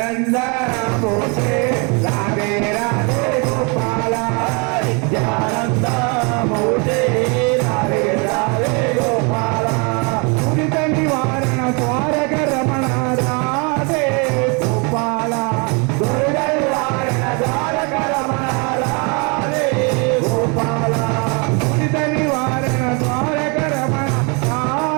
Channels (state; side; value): quieter; left; 32.5 dB